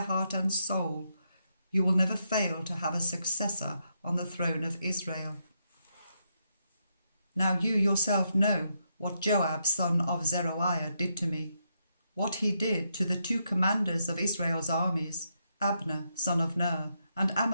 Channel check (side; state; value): both; inverted; correlation -0.80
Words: heart and soul, you will never fail to have a successor on the throne of Israel. Now you yourself know what Joab son of Zeruiah did to me, what he did to the two commanders of Israel's armies, Abner son of Ner and